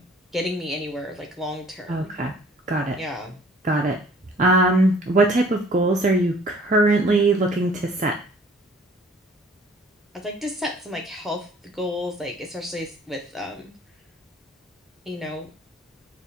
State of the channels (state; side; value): normal; both; correlation 0.54